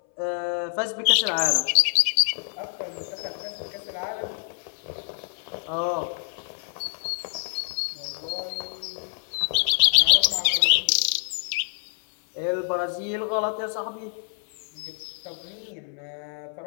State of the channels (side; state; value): right; silent; 61 dB below the other